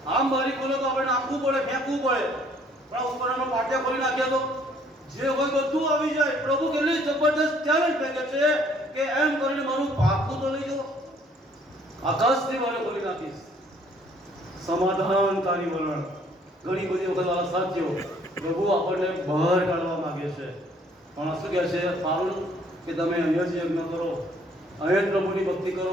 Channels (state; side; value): normal; both; correlation 0.61